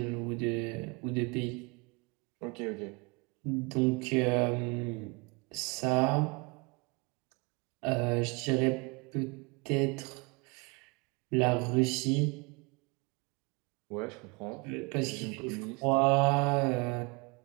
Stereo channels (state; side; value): quieter; left; 29.9 dB